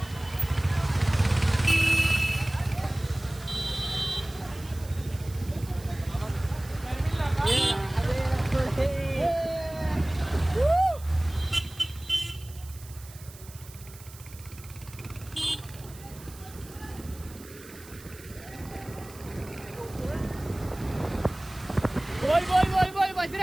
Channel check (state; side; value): noise; right; hiss, 19 dB below the sound